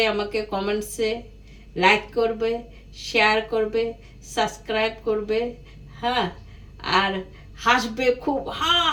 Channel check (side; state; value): both; identical; correlation 1.00